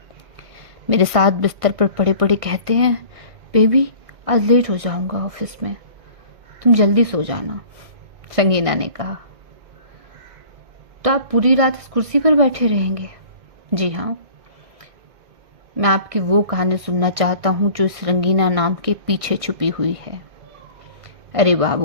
मेरे साथ बिस्तर पर पड़े पड़े कहते हैं, बेबी आज लेट हो जाऊंगा ऑफिस में, तुम जल्दी सो जाना। संगीना ने कहा, तो आप पूरी रात इस कुर्सी पर बैठे रहेंगे? जी हाँ, मैं आपकी वो कहानी सुनना चाहता हूँ जो इस रंगीना नाम के पीछे छुपी हुई है। अरे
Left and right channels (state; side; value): late; left; 1.6 ms